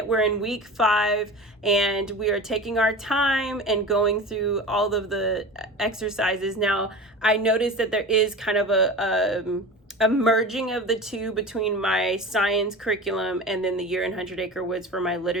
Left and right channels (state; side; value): normal; both; correlation 0.33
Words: We're in week 5, and we are taking our time and going through all of the exercises. Now, I noticed that there is kind of a merging of the two between my science curriculum and then the Year in 100 Acre Woods for my